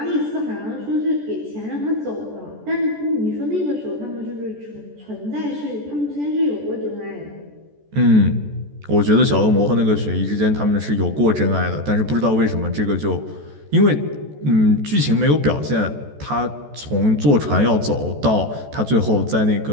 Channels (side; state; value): left; late; 14 ms